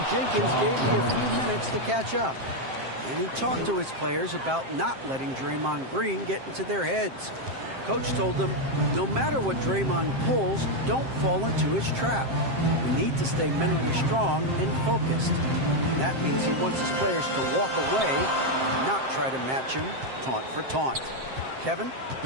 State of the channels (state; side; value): late; left; 7.6 ms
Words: Jenkins gave me a few minutes to catch up. And he talked to his players about not letting Draymond Green get into their heads. Coach told them, no matter what Draymond pulls, don't fall into his trap. We need to stay mentally strong and focused. And that means he wants his players to walk away and not try to match him taunt for taunt. Kevin?